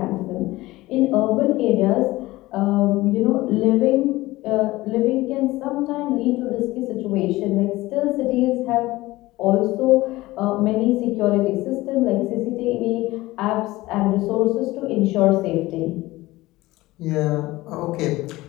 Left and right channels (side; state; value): right; quieter; 18.8 dB